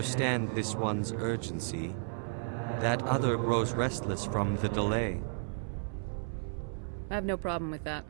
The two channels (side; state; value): left; silent; 55 dB below the other